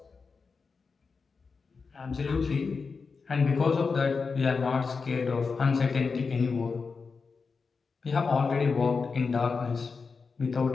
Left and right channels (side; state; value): right; quieter; 4.9 dB